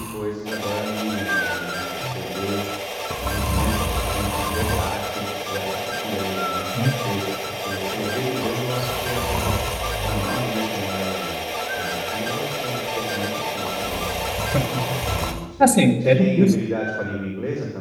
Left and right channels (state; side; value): identical; both; correlation 1.00